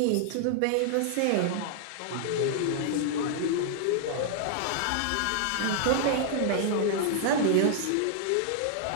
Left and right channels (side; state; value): both; different; correlation -0.01